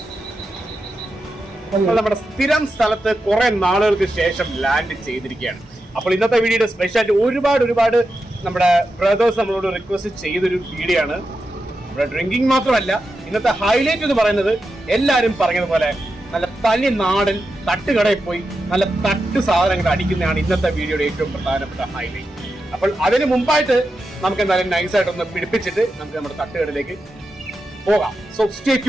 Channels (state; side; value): normal; both; correlation 0.89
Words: നമ്മുടെ സ്ഥിരം സ്ഥലത്ത് കുറെ നാളുകൾക്ക് ശേഷം ലാൻഡ് ചെയ്തിരിക്കുകയാണ്. അപ്പോൾ ഇന്നത്തെ വീഡിയോയുടെ സ്പെഷ്യാലിറ്റി ഒരുപാട് നമ്മുടെ ബ്രദേഴ്സ് നമ്മളോട് റിക്വസ്റ്റ് ചെയ്തൊരു വീഡിയോ ആണ്. ഇവിടെ ഡ്രിങ്കിങ് മാത്രമല്ല, ഇന്നത്തെ ഹൈലൈറ്റ് എന്ന് പറയുന്നത് എല്ലാവരും പറഞ്ഞതുപോലെ നല്ല തനി നാടൻ തട്ടുകടയിൽ പോയി നല്ല തട്ട് സാധനങ്ങൾ അടിക്കുന്നതാണ് ഇന്നത്തെ വീഡിയോയുടെ ഏറ്റവും പ്രധാനപ്പെട്ട ഹൈലൈറ്റ്. അപ്പോൾ അതിന് മുമ്പായിട്ട് നമുക്ക് എന്തായാലും നൈസായിട്ടൊന്ന് പിടിപ്പിച്ചിട്ട് നമുക്ക് നമ്മുടെ തട്ടുകടയിലേക്ക് പോകാം. So stay